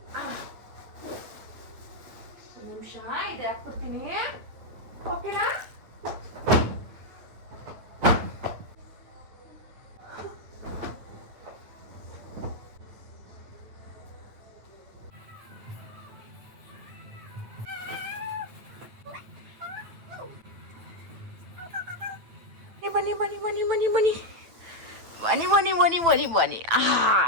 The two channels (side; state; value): left; late; 9.1 ms